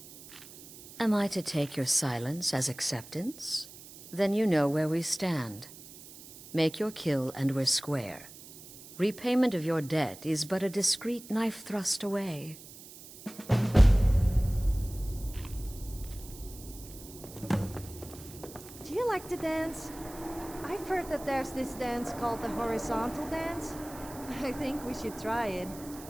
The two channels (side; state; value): right; noise; hiss, 17 dB below the sound